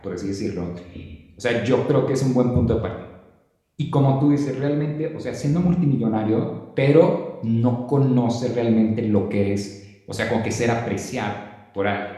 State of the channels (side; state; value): both; identical; correlation 1.00